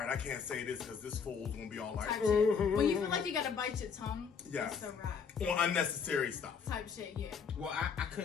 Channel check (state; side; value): quieter; right; 6.3 dB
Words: I can't say this because this fool's gonna be all like, type shit. When you feel like you gotta bite your tongue, yeah, it's a wrap. On unnecessary stuff. Type shit, yeah. Well, I